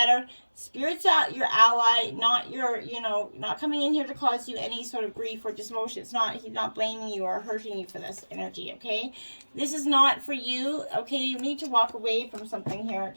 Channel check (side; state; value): both; inverted; correlation -1.00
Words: Spirit's your ally, not not coming in here to cause you any sort of grief or dismotion. He's not blaming you or hurting you for this energy, okay? This is not for you, okay? You need to walk away from something here,